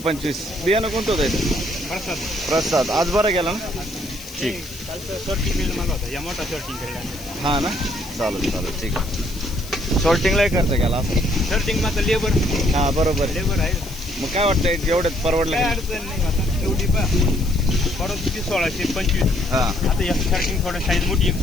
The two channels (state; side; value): noise; left; hiss, 16 dB below the sound